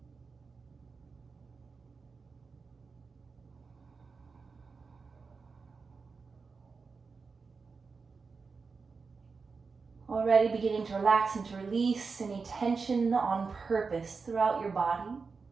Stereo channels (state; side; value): quieter; left; 4.7 dB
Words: Already beginning to relax and to release any tension on purpose throughout your body.